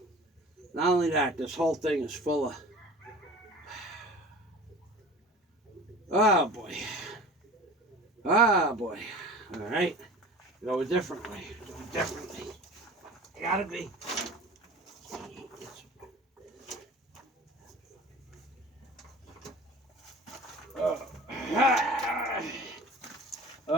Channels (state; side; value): normal; both; correlation 0.40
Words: Not only that, this whole thing is full of, oh boy, oh boy. All right, go a different way, do it differently. I gotta be.